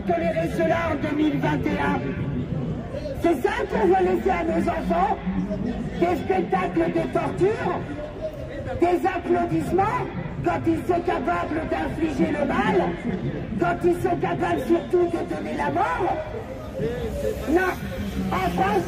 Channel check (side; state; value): both; identical; correlation 1.00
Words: tolérer cela en 2021? C'est ça qu'on va laisser à nos enfants? Des spectacles de torture? Des applaudissements quand ils sont capables d'infliger le mal? Quand ils sont capables surtout de donner la mort? Non, en France,